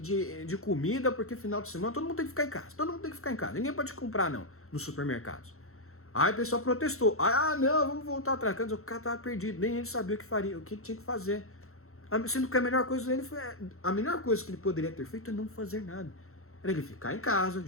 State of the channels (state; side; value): late; right; 0.63 ms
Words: de comida, porque final de semana todo mundo tem que ficar em casa. Ninguém pode comprar não, nos supermercados. Aí o pessoal protestou. Não, vamos voltar atrás. O cara tava perdido, nem ele sabia o que tinha que fazer. Sendo que a melhor coisa que ele poderia ter feito é não fazer nada. Era ele ficar em casa,